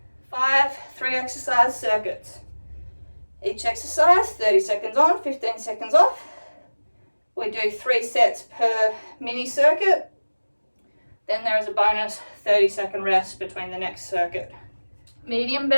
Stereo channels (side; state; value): both; inverted; correlation -1.00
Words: 5 3-exercise circuits. Each exercise, 30 seconds on, 15 seconds off. We do 3 sets per mini circuit. Then there is a bonus 30-second rest between the next circuit. Medium